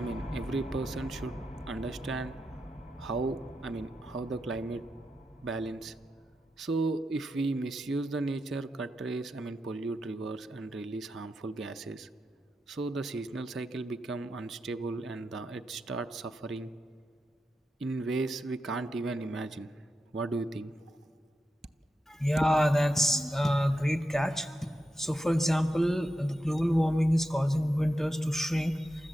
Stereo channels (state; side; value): normal; both; correlation 0.87